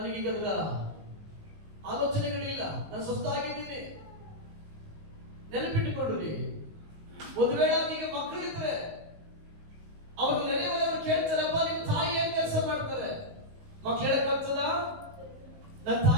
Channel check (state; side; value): late; left; 19 ms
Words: ಅದರ ಆಲೋಚನೆಗಳಿಲ್ಲ, ನಾನು ಸ್ವಸ್ಥಾಗಿದ್ದೀನಿ. ನೆನಪಿಟ್ಟುಕೊಡ್ರಿ, ಒಂದು ವೇಳೆ ಈಗ ಮಕ್ಕಳಿದ್ರೆ ಅವ್ರ ನೆರೆಯವರು ಕೇಳ್ತಾರಪ್ಪ, ನಿಮ್ ತಾಯಿ ಏನ್ ಕೆಲಸ ಮಾಡ್ತಾರೆ? ಮಕ್ಳು ಹೇಳಕ್ಕಾಗ್ತದ? ನನ್ನ